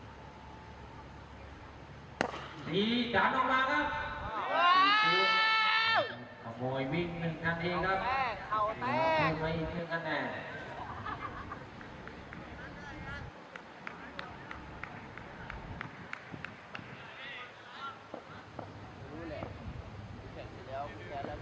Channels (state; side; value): identical; both; correlation 1.00